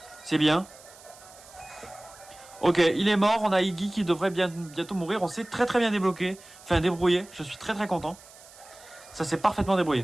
C'est bien. Ok, il est mort, on a Iggy qui devrait bientôt mourir. On s'est très bien débloqué. Enfin, débrouillé, je suis très content. Ça s'est parfaitement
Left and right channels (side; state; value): right; noise; hiss, 22 dB below the sound